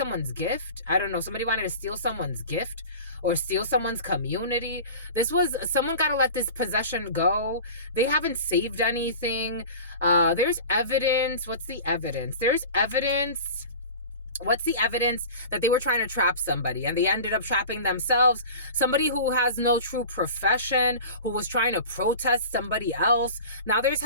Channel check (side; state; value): both; inverted; correlation -0.36